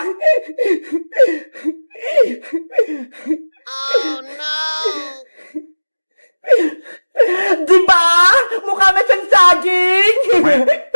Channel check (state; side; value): inverted; both; correlation -1.00